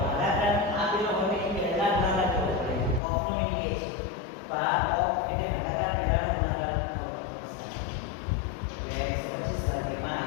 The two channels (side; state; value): right; drops out; at 3.0 s